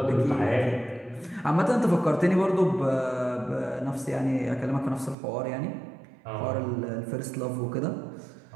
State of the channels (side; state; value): left; drops out; at 5.2 s